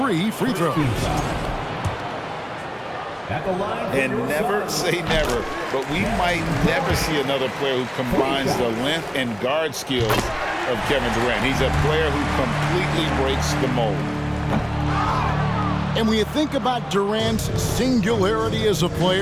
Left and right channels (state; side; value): identical; both; correlation 1.00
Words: free throws. And never say never, but we might never see another player who combines the length and guard skills of Kevin Durant. He's a player who completely breaks the mold. And when you think about Durant's singularity as a